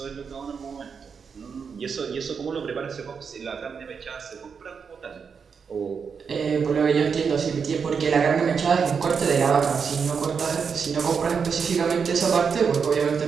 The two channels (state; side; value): quieter; left; 6.1 dB